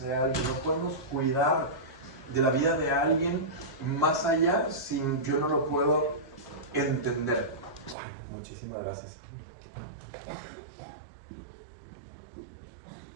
de alguien, no podemos cuidar de la vida de alguien más allá si yo no lo puedo entender. Ay, muchísimas gracias.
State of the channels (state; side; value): drops out; left; at 8.0 s